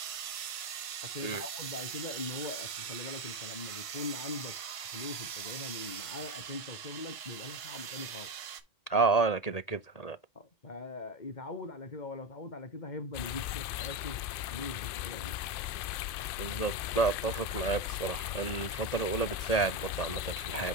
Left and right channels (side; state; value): right; late; 1.5 ms